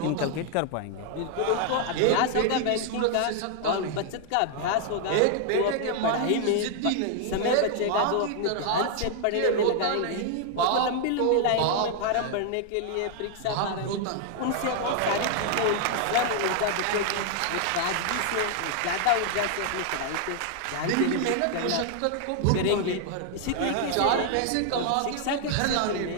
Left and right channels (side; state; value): both; different; correlation 0.00